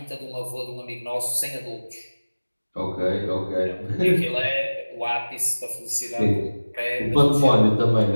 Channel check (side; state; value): both; inverted; correlation -1.00